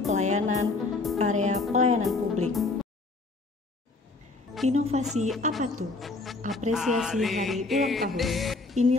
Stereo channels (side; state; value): right; quieter; 3.5 dB